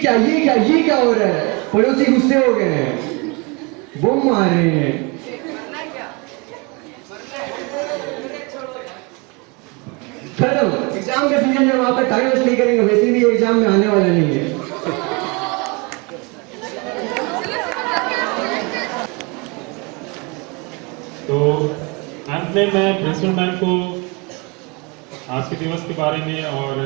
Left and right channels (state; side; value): quieter; left; 29.5 dB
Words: क्या हो रहा है? पड़ोसी गुस्से हो गए हैं, बम मार रहे हैं। खत्म। एग्जाम का सीजन में वहां पर टाइम वेस्ट नहीं करेंगे, वैसे भी एग्जाम में आने वाला नहीं है। तो अंत में मैं प्रिंसिपल मैम को आज के दिवस के बारे में और